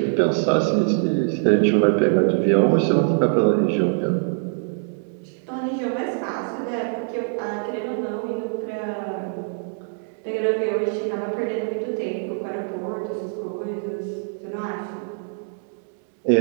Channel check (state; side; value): silent; left; 63 dB below the other